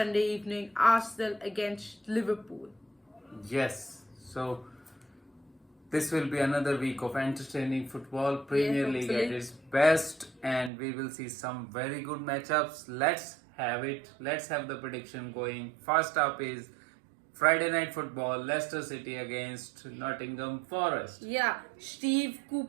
evening Arsenal against Liverpool. Yes, so this will be another week of entertaining football. Premier League at hopefully. its best, and we will see some very good matchups. Let's have it. Let's have the prediction going. First up is Friday night football, Leicester City against Nottingham Forest. Yeah, Steve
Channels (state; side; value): drops out; left; at 10.7 s